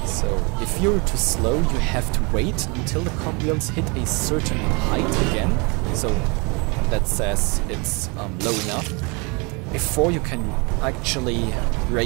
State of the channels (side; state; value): left; quieter; 30.1 dB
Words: So if you're too slow, you have to wait until the cogwheels hit a certain height again, so that says it's low enough, before you can actually